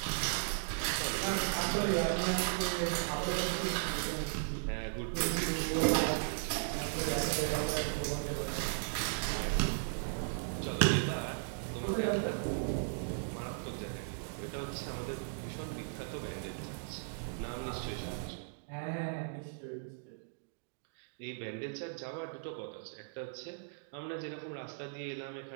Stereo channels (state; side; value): silent; left; digital silence